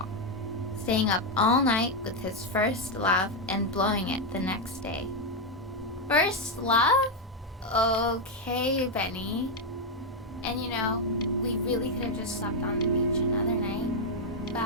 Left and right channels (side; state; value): both; normal; correlation 0.02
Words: staying up all night with his first love and blowing it the next day. First love? Okay, Benny. And you know, we really could have just slept on the beach another night,